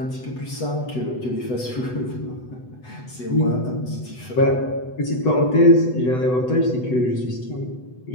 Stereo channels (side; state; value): right; late; 8.0 ms